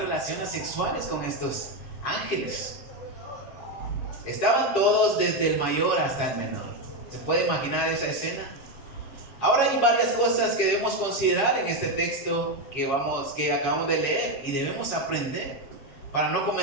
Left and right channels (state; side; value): late; right; 7.3 ms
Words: sexuales con estos ángeles. Estaban todos, desde el mayor hasta el menor. ¿Se puede imaginar esa escena? Ahora hay varias cosas que debemos considerar en este texto que acabamos de leer y debemos aprender para no